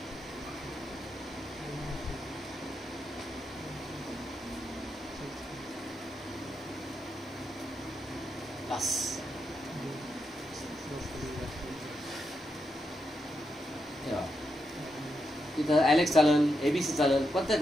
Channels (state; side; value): normal; both; correlation 0.84